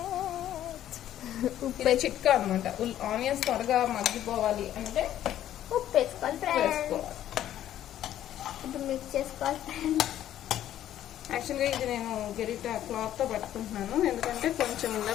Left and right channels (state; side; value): quieter; right; 11.9 dB